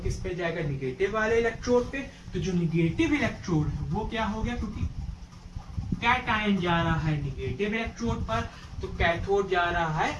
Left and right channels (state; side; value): identical; both; correlation 1.00